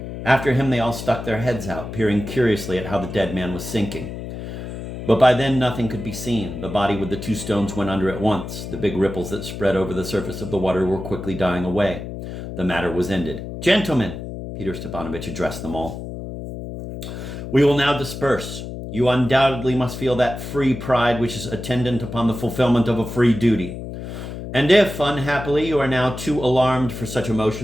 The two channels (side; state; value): left; noise; hum, 8 dB below the sound